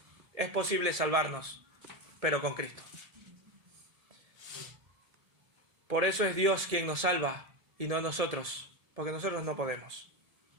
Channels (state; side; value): late; left; 1.7 ms